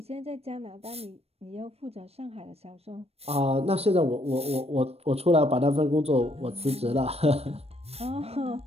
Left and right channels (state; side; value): late; left; 0.29 ms